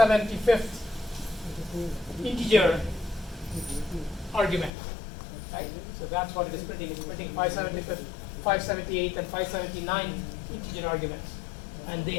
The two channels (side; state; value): right; drops out; at 4.7 s